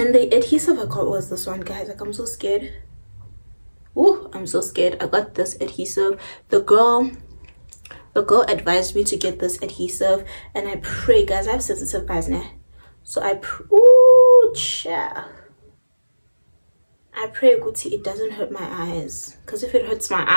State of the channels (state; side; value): inverted; both; correlation -1.00